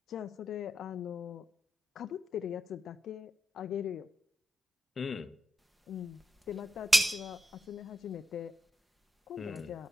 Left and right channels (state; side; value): normal; both; correlation 0.85